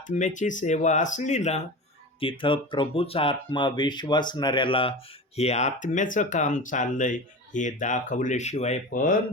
सेवा असली ना, तिथं प्रभूचा आत्मा विश्वासणाऱ्याला हे आत्म्याचं काम चाललंय हे दाखवल्याशिवाय पण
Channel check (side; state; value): both; normal; correlation 0.30